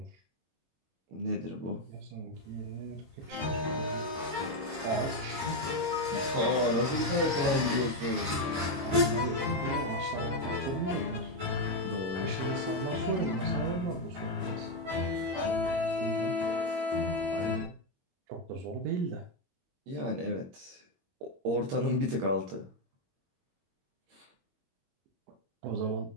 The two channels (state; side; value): late; left; 21 ms